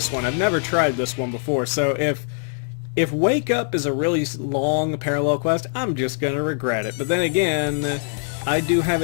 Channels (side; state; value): right; silent; digital silence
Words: one. I've never tried this one before, so if Wake Up is a really long parallel quest, I'm just gonna regret it. But then again, I do have